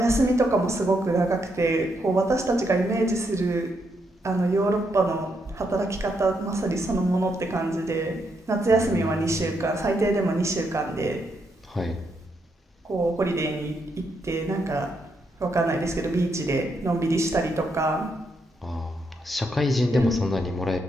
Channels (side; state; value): both; normal; correlation 0.78